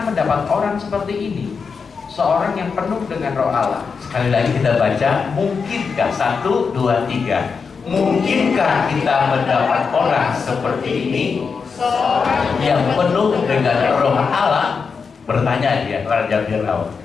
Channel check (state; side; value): quieter; right; 5.5 dB